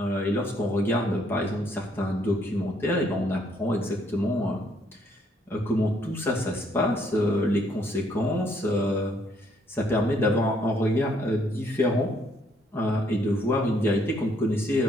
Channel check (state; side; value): normal; both; correlation 0.68